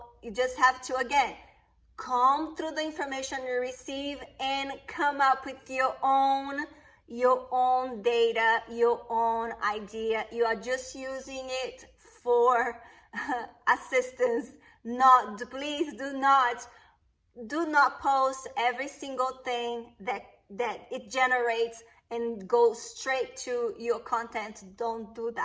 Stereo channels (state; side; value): identical; both; correlation 1.00